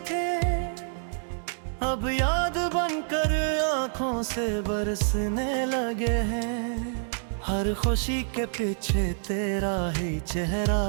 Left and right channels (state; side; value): silent; left; digital silence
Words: थे, अब याद बनकर आंखों से बरसने लगे हैं। हर खुशी के पीछे तेरा ही चेहरा